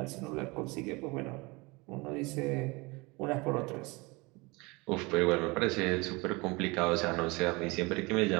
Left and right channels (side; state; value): left; quieter; 25.3 dB